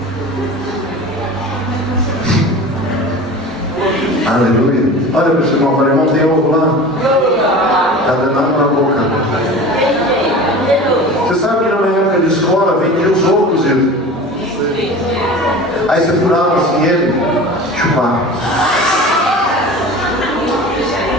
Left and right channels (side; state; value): both; normal; correlation 0.36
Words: Aleluia. Olha para o seu irmão, falei, irmão, tem ovo lá? Está danado na boca. Você sabe que na minha época de escola vendia os ovos cozidos. Aí você furava assim ele, chupava.